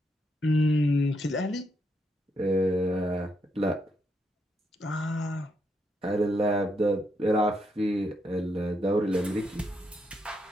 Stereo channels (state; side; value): normal; both; correlation 0.79